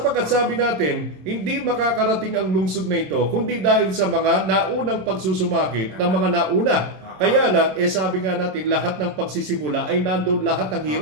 sabi natin, hindi makakarating ang lungsod na ito kundi dahil sa mga naunang pagsusumakit ng mga nauna. Kaya lang, sabi nga natin, lahat ng pagsisimula ay nandoon lahat ng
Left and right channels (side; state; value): left; late; 27 ms